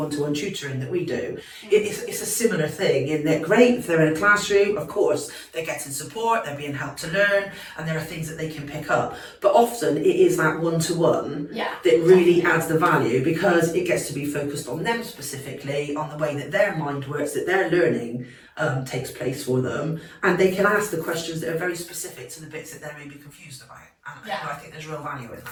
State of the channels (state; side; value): identical; both; correlation 1.00